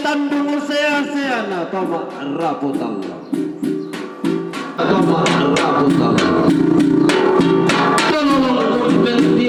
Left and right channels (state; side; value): identical; both; correlation 1.00